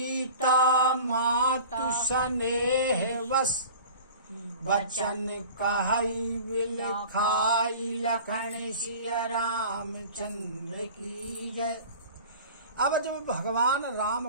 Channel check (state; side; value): inverted; both; correlation -0.40